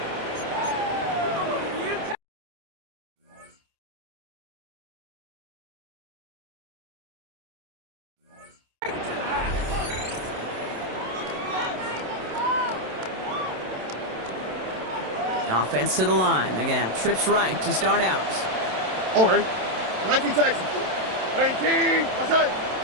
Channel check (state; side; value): late; left; 27 ms